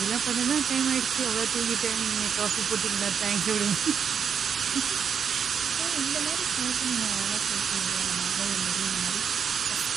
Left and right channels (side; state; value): left; quieter; 7.2 dB